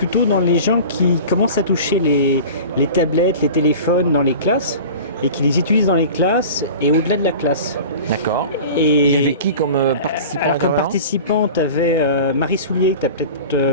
dans les gens qui commencent à toucher les tablettes, les téléphones dans les classes et qui les utilisent dans les classes et au-delà de la classe. D'accord. Et il y avait qui comme participant? Alors, comme participant, tu avais Marie Soulier, que tu as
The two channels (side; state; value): both; inverted; correlation -0.37